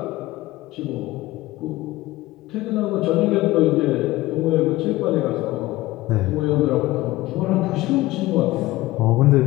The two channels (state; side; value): quieter; right; 18.0 dB